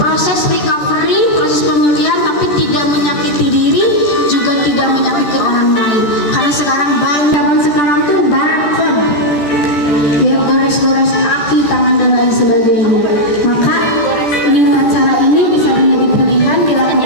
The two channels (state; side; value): late; right; 14 ms